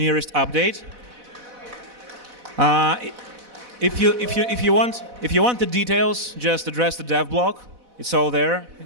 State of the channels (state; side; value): late; left; 4.0 ms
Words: update. If you want the details, just address the dev blog. It's all there.